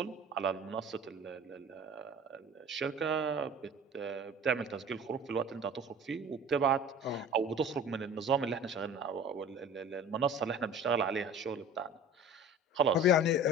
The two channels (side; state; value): both; normal; correlation 0.41